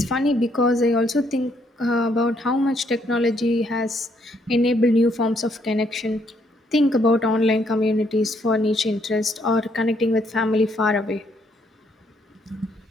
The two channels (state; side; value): normal; both; correlation 0.71